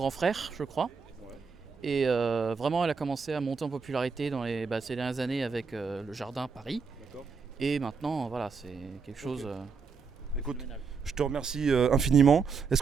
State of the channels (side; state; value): left; quieter; 5.4 dB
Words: frère, je crois. Et vraiment, elle a commencé à monter en popularité dans ces dernières années avec le Jardin Paris. Et maintenant, voilà, c'est quelque chose... Écoute, je te remercie infiniment. Est-ce